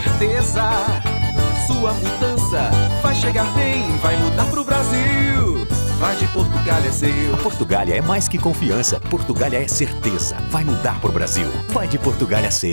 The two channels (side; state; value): both; inverted; correlation -1.00